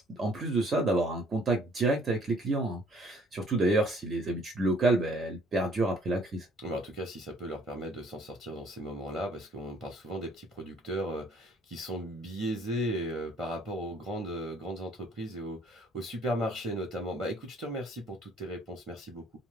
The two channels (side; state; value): both; normal; correlation 0.60